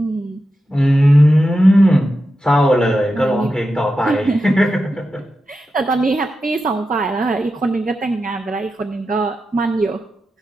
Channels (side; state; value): both; normal; correlation 0.90